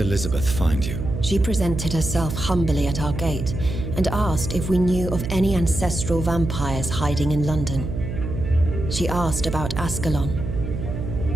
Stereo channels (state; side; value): noise; right; hum, 5 dB below the sound